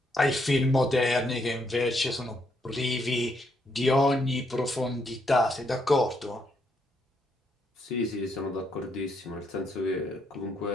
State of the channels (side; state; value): both; normal; correlation 0.75